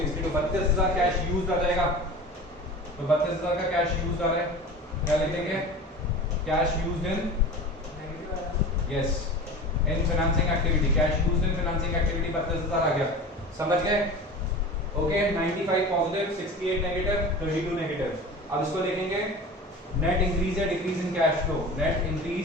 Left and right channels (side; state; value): both; normal; correlation 0.35